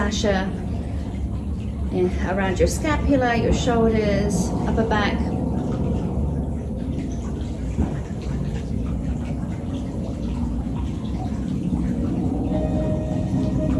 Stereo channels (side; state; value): both; identical; correlation 1.00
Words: around your scapula, your shoulders, upper back.